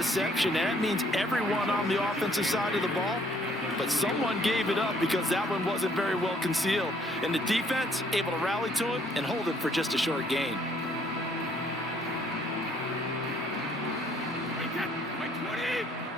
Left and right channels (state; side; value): normal; both; correlation 0.63